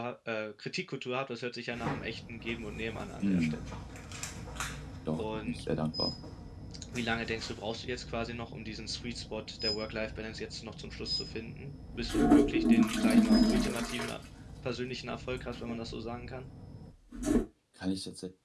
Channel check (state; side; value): identical; both; correlation 1.00